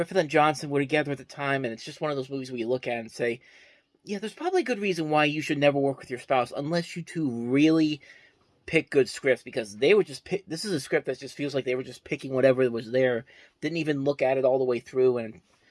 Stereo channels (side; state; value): both; identical; correlation 1.00